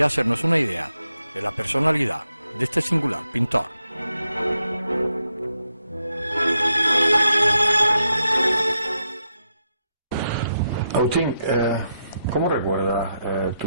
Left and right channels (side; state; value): both; inverted; correlation -0.83